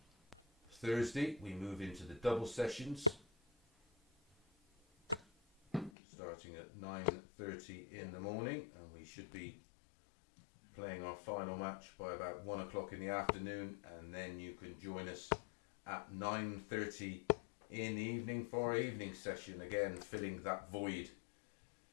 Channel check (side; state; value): right; drops out; at 5.9 s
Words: Thursday, we move into the double sessions, starting at 9:30 in the morning, and we should be playing our final match by about 1 o'clock in the afternoon, and then you can join us at 9:30 in the evening for our evening session, again filling that void